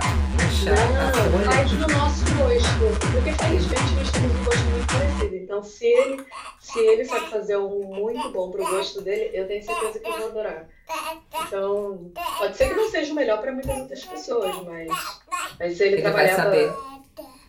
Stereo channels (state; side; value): identical; both; correlation 1.00